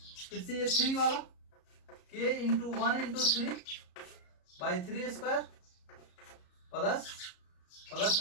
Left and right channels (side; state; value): right; late; 34 ms